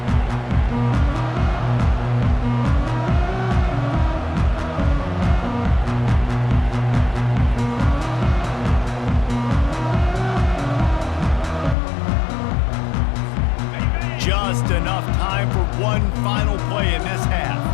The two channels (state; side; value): drops out; right; at 11.8 s